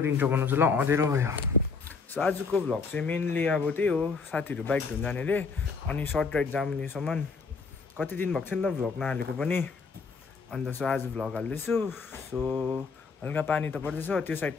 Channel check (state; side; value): quieter; right; 4.9 dB